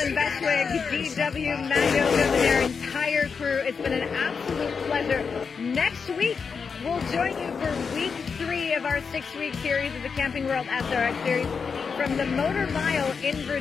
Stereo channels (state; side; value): quieter; right; 5.6 dB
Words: Bestwig, DW, Mando, and their entire crew, it's been an absolute pleasure. Next week, we'll join you for week 3 of our 6-week series of the Camping World SRX Series. from the Motor Mile in